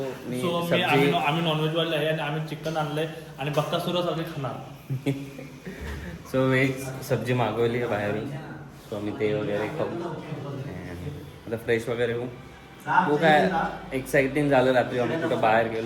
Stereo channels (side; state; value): both; identical; correlation 1.00